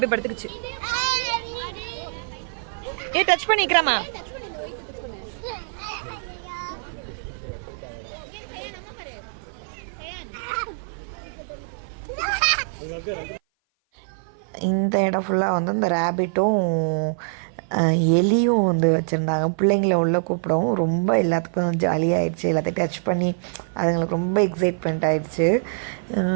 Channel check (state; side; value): silent; left; 56 dB below the other